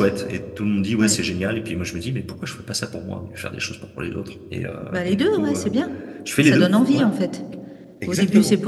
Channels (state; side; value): identical; both; correlation 1.00